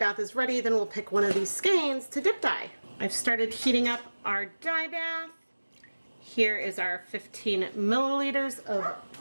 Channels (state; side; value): inverted; both; correlation -1.00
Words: is ready, then we'll pick one of these skeins to dip dye. I've started heating up our dye bath. Here is our 15 milliliters of